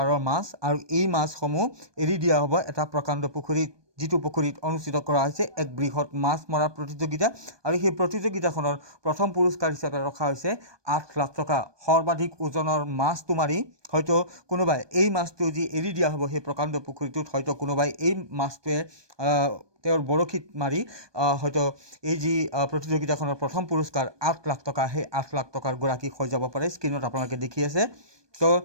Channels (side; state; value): left; late; 1.2 ms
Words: মাছ আৰু এই মাছসমূহ এৰি দিয়া হ'ব এটা প্ৰকাণ্ড পুখুৰীত, যিটো পুখুৰীত অনুষ্ঠিত কৰা হৈছে এক বৃহৎ মাছ মৰা প্ৰতিযোগিতা। আৰু সেই প্ৰতিযোগিতাখনৰ প্ৰথম পুৰস্কাৰ হিচাপে ৰখা হৈছে 8 লাখ টকা। সৰ্বাধিক ওজনৰ মাছটো মাৰি হয়তো কোনোবাই এই মাছটো যি এৰি দিয়া হ'ব সেই প্ৰকাণ্ড পুখুৰীটোত, হয়তো কোনোবাই এই মাছটোৱে তেওঁৰ বৰশীত মাৰি হয়তো এই যি প্ৰতিযোগিতাখনৰ প্ৰথম পুৰস্কাৰ 8 লাখ টকা, সেই 8 লাখ টকাৰ গৰাকী হৈ যাব পাৰে। স্ক্ৰীণত আপোনালোকে দেখি আছে। তো